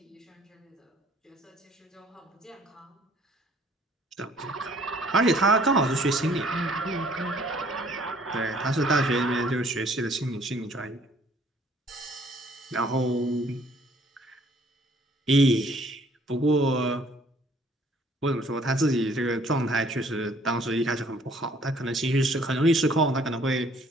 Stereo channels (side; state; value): both; normal; correlation 0.59